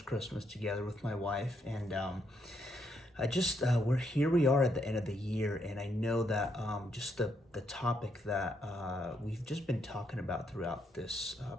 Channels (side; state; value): both; normal; correlation 0.77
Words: Christmas together with my wife. And we are at the end of the year. And I know that just the topic that we've just been talking about throughout this